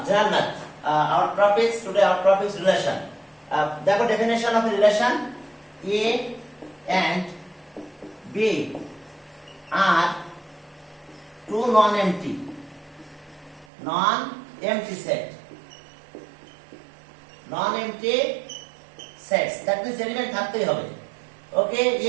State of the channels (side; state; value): left; drops out; at 13.7 s